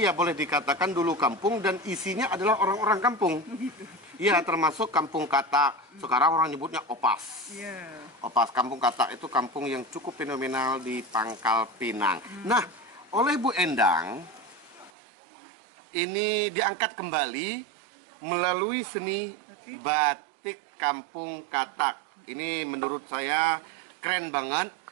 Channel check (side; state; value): left; drops out; at 14.9 s